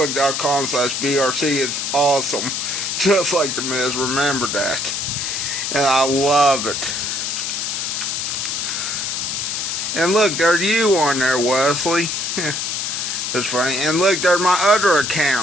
It's awesome, just like the Miz. Remember that, and I love it. And look, there's you on there, Wesley. That's funny. And look, there's my other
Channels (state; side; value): noise; left; hiss, 2 dB below the sound